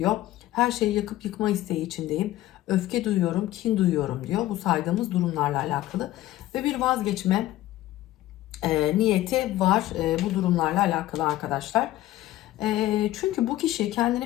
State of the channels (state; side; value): quieter; right; 15.2 dB